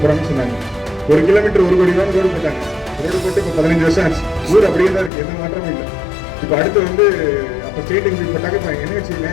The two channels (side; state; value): right; drops out; at 5.1 s